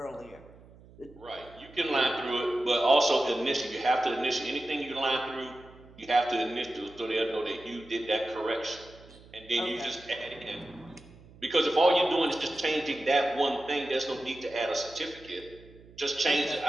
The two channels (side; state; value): right; noise; hum, 23 dB below the sound